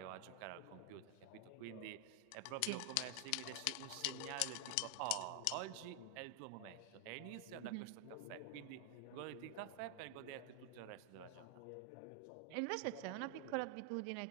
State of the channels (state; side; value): different; both; correlation 0.00